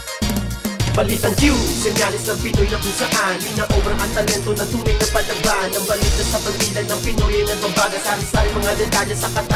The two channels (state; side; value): identical; both; correlation 1.00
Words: Balitang Q, senyalis ng Pinoy na kung saan Ina-obra ang talento na tunay na palaban Ang balita sa pagbilan ng Pinoy ay nagbabaga Sari-sari mga detalye sa